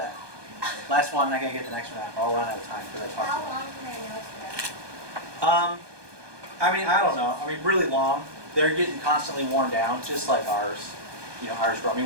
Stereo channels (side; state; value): left; late; 1.2 ms